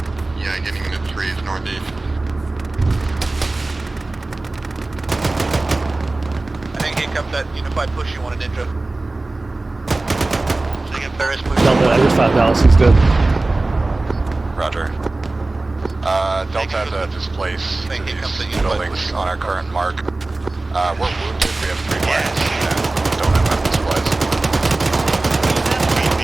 Yeah, getting into 3s northeast. I think here comes that unified push you wanted, Ninja. Ferris push. Delta, I just found Dallas, he's dead. Roger. Delta has a displace to these buildings on our current mark. We're wounded, we have 3 flags, and don't have weapon supplies.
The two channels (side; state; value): left; quieter; 3.1 dB